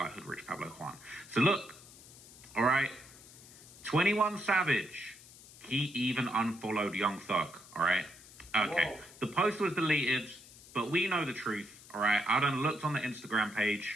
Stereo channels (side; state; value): left; noise; hiss, 20 dB below the sound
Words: Hood Rich Pablo Juan. So look, all right, 21 Savage. He even unfollowed Young Thug, all right? Okay, whoa. The post was deleted, but we know the truth, all right? I done looked on the Instagram